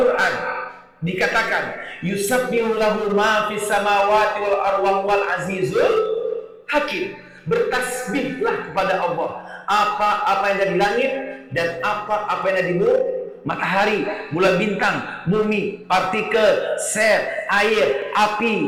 dikatakan, yusabbihu lahu ma fis samawati wal arwah wal azizul hakim. Bertasbihlah kepada Allah apa yang ada di langit dan apa yang ada di bumi. Matahari, bulan bintang, bumi, partikel, sel, air,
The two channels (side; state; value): both; identical; correlation 1.00